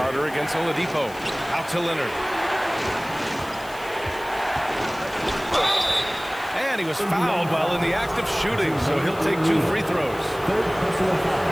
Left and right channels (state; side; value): noise; left; hiss, 20 dB below the sound